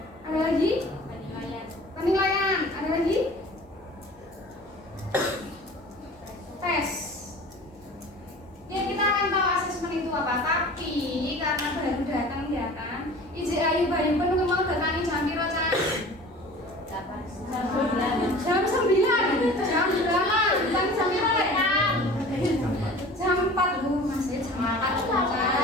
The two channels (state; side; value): normal; both; correlation 0.42